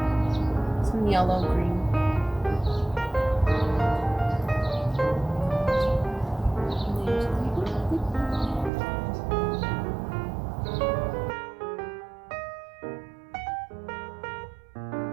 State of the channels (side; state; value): left; drops out; at 8.7 s